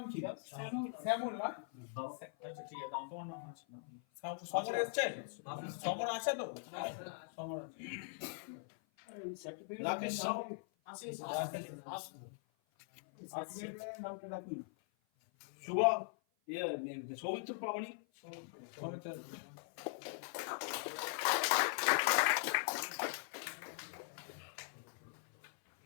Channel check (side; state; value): right; silent; 50 dB below the other